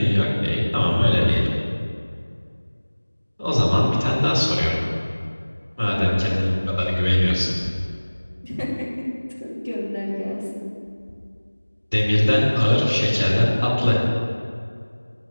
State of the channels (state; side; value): inverted; both; correlation -1.00